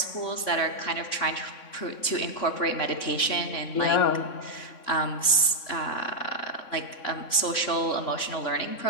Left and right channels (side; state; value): right; late; 3.6 ms